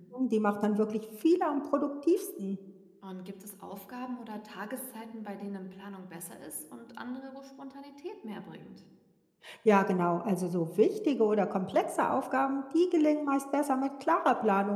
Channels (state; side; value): identical; both; correlation 1.00